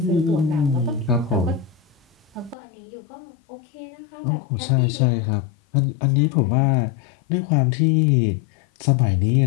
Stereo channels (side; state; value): right; drops out; at 2.6 s